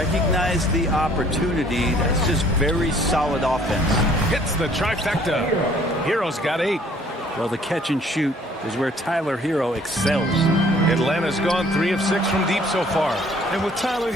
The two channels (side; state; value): both; normal; correlation 0.58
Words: the opportunity. That's just very solid offense. Hits the trifecta. Hero's got 8. Well, the catch and shoot is where Tyler Hero excels. Atlanta's gone 3 of 6 from deep so far. And with Tyler